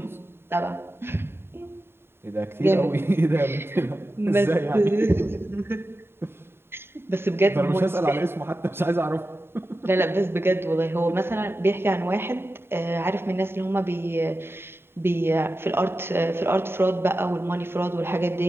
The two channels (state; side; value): late; left; 0.11 ms